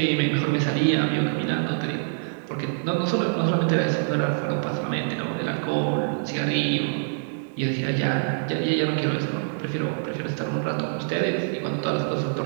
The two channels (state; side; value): silent; left; 62 dB below the other